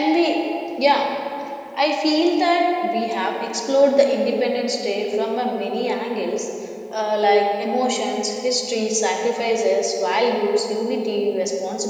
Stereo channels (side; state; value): both; identical; correlation 1.00